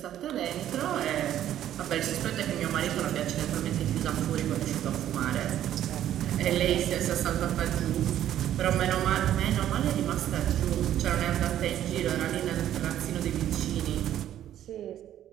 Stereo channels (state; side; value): quieter; left; 11.6 dB